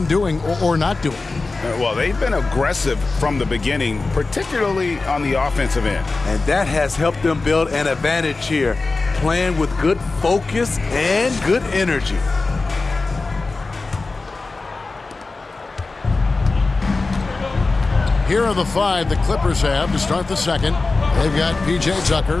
doing or not doing? Well, they've been aggressive from the beginning, particularly on the offensive end. And that has helped them build an advantage here, playing with good focus and good energy. Here are the five the Clippers have to start the second. They've got P.J.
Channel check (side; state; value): right; quieter; 3.7 dB